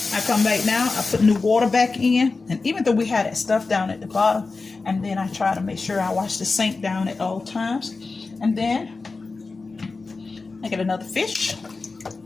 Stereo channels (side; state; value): right; quieter; 4.0 dB